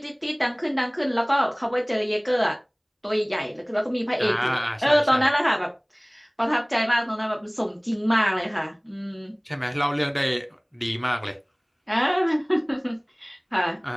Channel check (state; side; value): identical; both; correlation 1.00